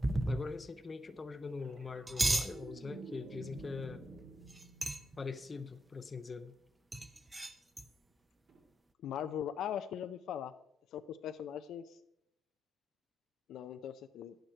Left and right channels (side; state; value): both; normal; correlation 0.84